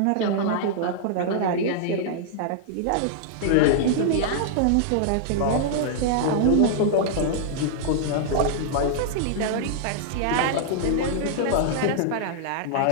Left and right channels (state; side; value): different; both; correlation -0.01